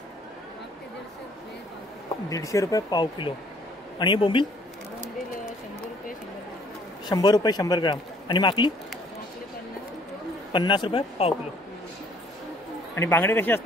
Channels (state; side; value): normal; both; correlation 0.60